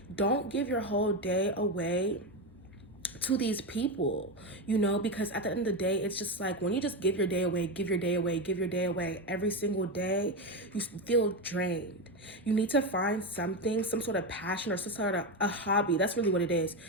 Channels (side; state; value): both; normal; correlation 0.13